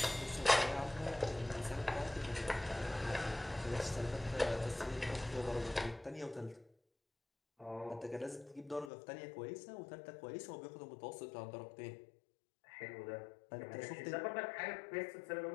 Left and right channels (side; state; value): right; drops out; at 8.9 s